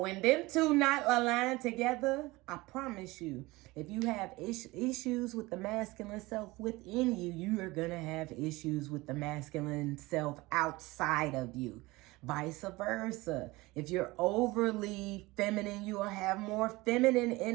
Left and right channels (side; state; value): left; quieter; 21.4 dB